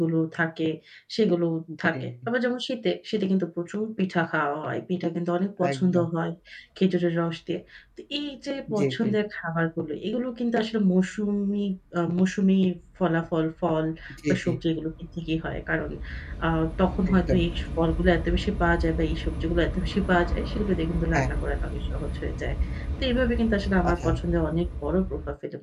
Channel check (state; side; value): identical; both; correlation 1.00